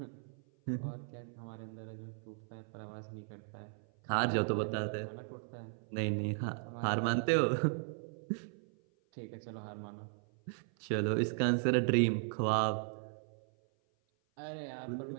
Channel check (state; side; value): silent; left; 53 dB below the other